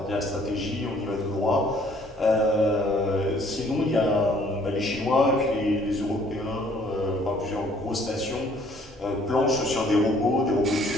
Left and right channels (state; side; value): normal; both; correlation 0.60